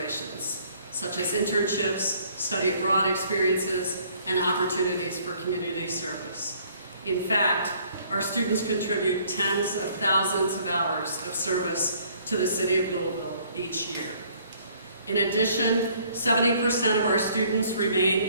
such as internships, study abroad experiences, and opportunities for community service. In fact, our students contribute tens of thousands of hours of service to the city of Louisville each year. In addition, 70% of our students remain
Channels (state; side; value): inverted; both; correlation -0.60